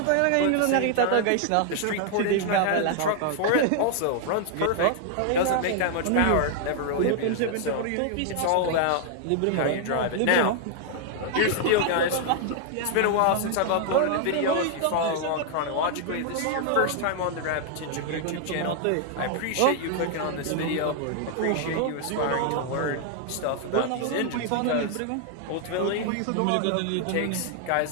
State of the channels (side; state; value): both; different; correlation 0.00